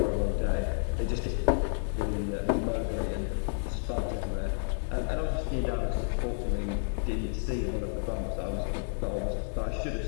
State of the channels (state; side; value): silent; right; 57 dB below the other